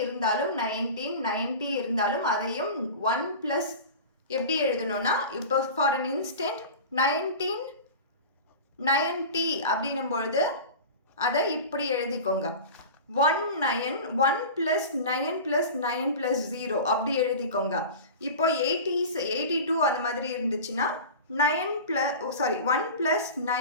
இருந்தாலும் 1990 இருந்தாலும் அதையும் 1+ எப்படி எழுதணும்னா, இப்போ ஃபார் அன் இன்ஸ்டன்ட் 1990 அப்படின்னும் பொழுது அதை இப்படி எழுதிக்கோங்க. 1 + 9 + 9 + 0 அப்படி எழுதிக்கோங்க. இப்போ 80s 82 அந்த மாதிரி இருந்துச்சுன்னா 1 +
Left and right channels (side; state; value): both; inverted; correlation -0.33